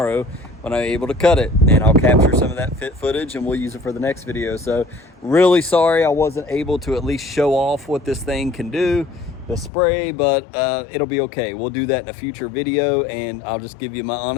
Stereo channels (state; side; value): drops out; right; at 9.7 s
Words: when I'm able to cut it. And I'll capture some of that fit footage and we'll use it for the next video. So really sorry I wasn't able to at least show off what this thing can do, the spray, but it'll be okay. We'll do that in a future video, and I'll just give you my